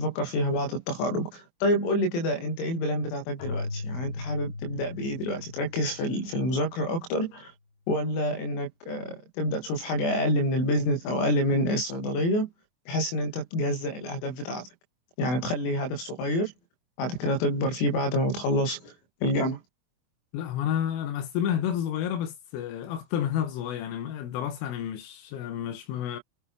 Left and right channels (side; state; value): right; late; 24 ms